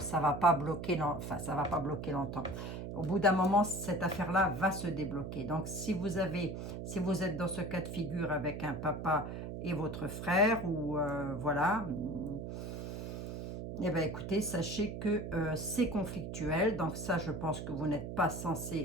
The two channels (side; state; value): right; noise; hum, 6 dB below the sound